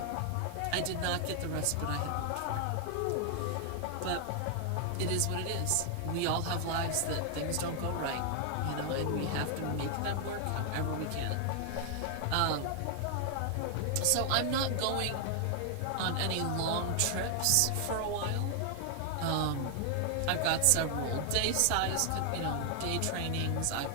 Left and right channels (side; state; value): both; different; correlation 0.00